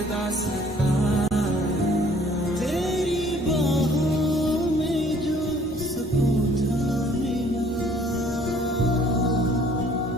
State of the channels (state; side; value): normal; both; correlation 0.58